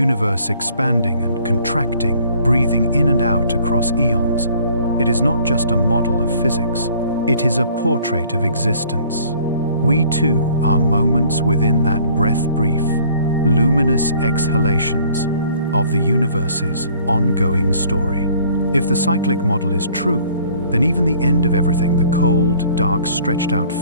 expanding and contracting, breathing in and out across eons, it is not just a model of physics. It is a portrait of existence. We too are moments within that breath-brief, luminous exhalations of the universe's ongoing story. If the cyclic model is true, then even the end of everything, the cold, dark, stretched-out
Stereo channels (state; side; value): inverted; both; correlation -0.56